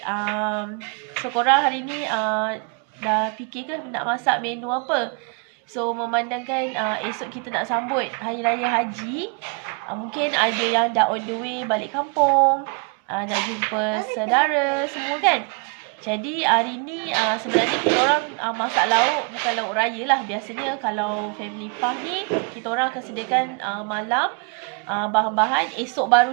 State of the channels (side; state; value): left; quieter; 36.3 dB